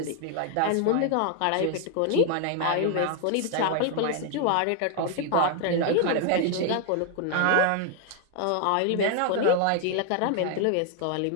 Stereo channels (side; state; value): both; different; correlation 0.00